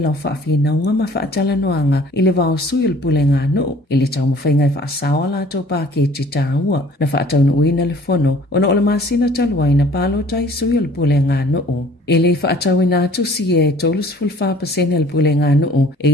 o whaafina unga ma whaatala noanga i le vao sui le pulenga noo i le tau mawhainga i whaasawa la tau pāketi tāua na whaatau na uina le fono o na o le masina taluai na palo tai sui le pulenga noo. E le whaatau ina atu si e tolus fulfa pasene le pulenga noo e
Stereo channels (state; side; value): normal; both; correlation 0.52